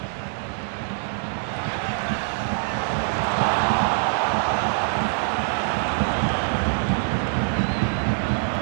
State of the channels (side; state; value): left; silent; 57 dB below the other